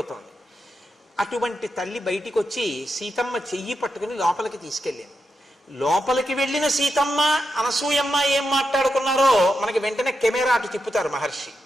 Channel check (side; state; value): both; normal; correlation 0.86